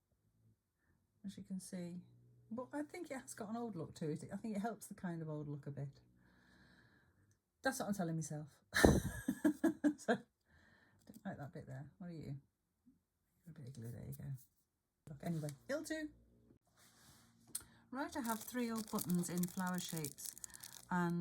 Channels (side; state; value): both; identical; correlation 1.00